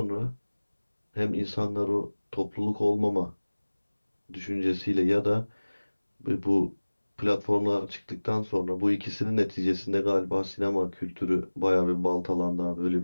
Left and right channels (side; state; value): both; inverted; correlation -1.00